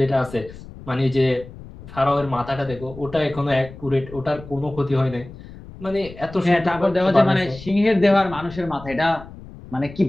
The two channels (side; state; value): left; noise; rumble, 16 dB below the sound